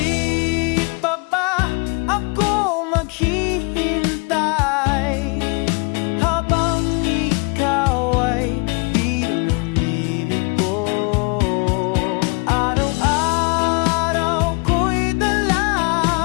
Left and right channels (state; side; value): quieter; right; 32.5 dB